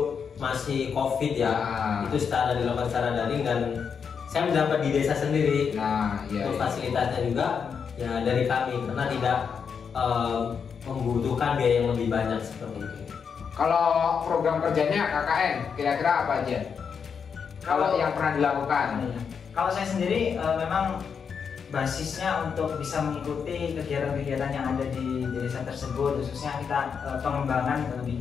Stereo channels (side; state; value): right; quieter; 6.5 dB